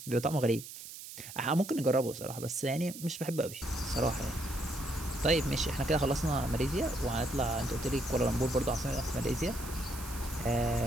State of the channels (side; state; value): right; noise; hiss, 12 dB below the sound